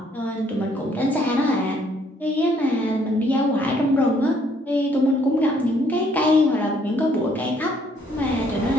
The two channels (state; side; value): normal; both; correlation 0.66